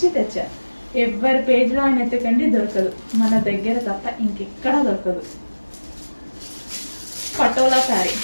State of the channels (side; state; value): both; inverted; correlation -1.00